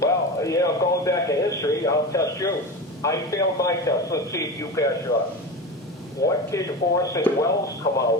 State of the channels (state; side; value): normal; both; correlation 0.25